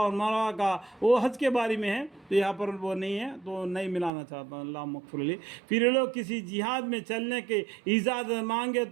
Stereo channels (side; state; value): left; drops out; at 4.1 s